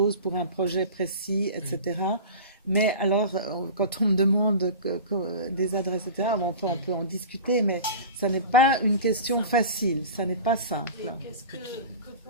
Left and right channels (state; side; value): inverted; both; correlation -0.34